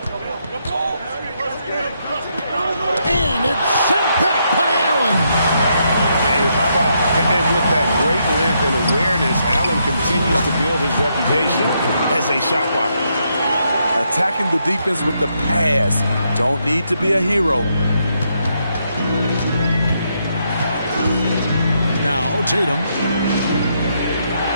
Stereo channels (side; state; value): both; inverted; correlation -0.78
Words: it's sent back by Allen. And with that great length and awareness, Allen continues to build his reputation as a shot blocker. Attacking the defense with the pass. Don't need to be a hero. Now Tatum.